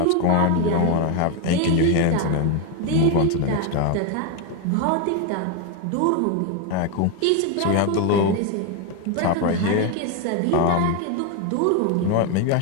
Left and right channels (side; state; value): both; different; correlation 0.02